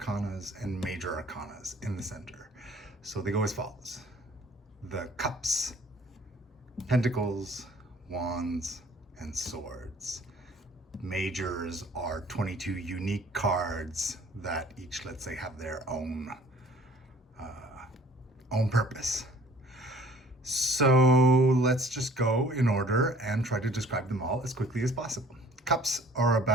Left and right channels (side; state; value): both; normal; correlation 0.53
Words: and major arcanas in the center. So they go as follows. The cups, pentacles, wands, and swords. Majors are 22 unique cards that each, let's say, have their own purpose. So let's just go in order and try to describe them all as quickly as possible. Cups are